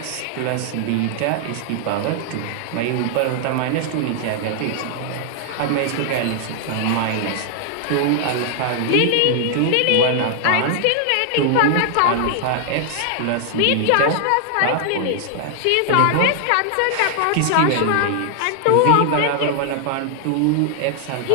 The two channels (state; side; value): different; both; correlation 0.00